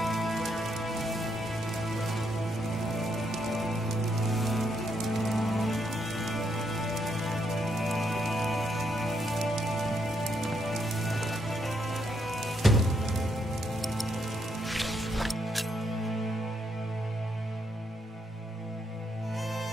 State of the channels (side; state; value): both; normal; correlation 0.76